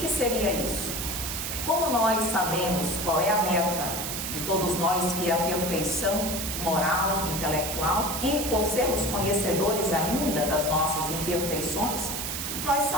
seria isso? Como nós sabemos qual é a meta de todos nós, que é a perfeição moral, intelectual, e por sermos conhecedores ainda das nossas imperfeições, nós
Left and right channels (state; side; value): noise; right; hiss, 4 dB below the sound